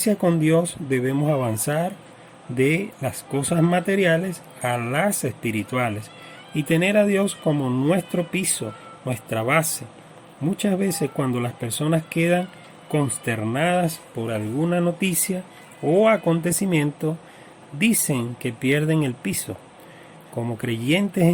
con Dios debemos avanzar de las cosas materiales a las espirituales y tener a Dios como nuestro piso, nuestra base. Muchas veces cuando las personas quedan consternadas por alguna noticia o acontecimiento, dicen que pierden el piso. Como creyentes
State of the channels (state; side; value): identical; both; correlation 1.00